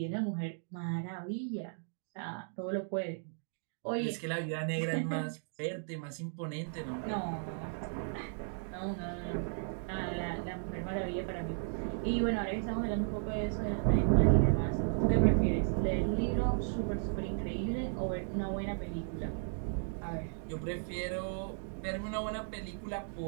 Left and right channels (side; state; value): left; silent; digital silence